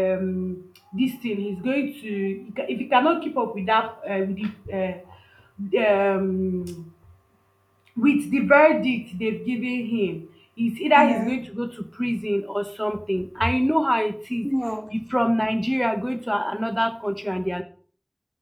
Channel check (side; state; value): both; identical; correlation 1.00